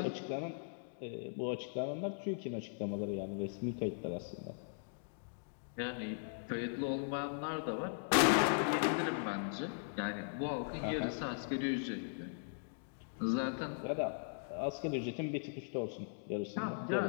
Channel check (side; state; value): right; silent; digital silence